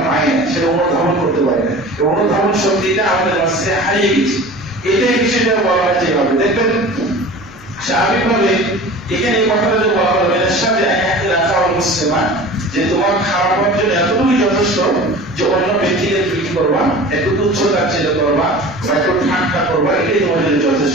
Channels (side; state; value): left; noise; rumble, 22 dB below the sound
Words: পাই না, সেটা অনুধাবন করতে পারি না। এই অনুধাবন শক্তিটা আমাদের মাঝে হারিয়ে গেছে। এটাই বিষয়টা বলা হয় যেভাবে দেখবেন স্বাভাবিকভাবে এখানে এই কথাটা যে বলা হলো মুসলিমা, যে তোমার খারাপ হওয়ার জন্য এতটুকুই যথেষ্ট যে অন্য ব্যক্তিকে তুমি করবা, একটু তুচ্ছতাচ্ছিল্য করবা বা একটু ঠাট্টা করবা, এটাই তোমার জন্য